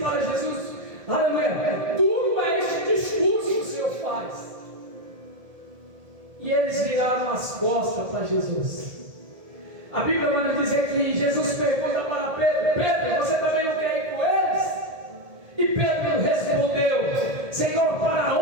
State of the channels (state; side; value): late; left; 1.7 ms